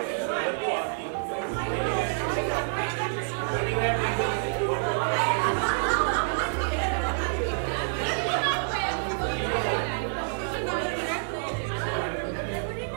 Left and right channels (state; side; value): silent; left; 60 dB below the other